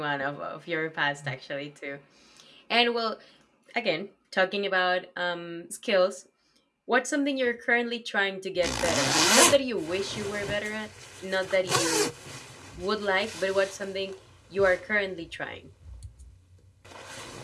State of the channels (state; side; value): identical; both; correlation 1.00